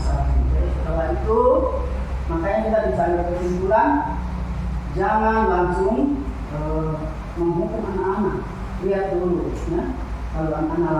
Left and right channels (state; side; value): identical; both; correlation 1.00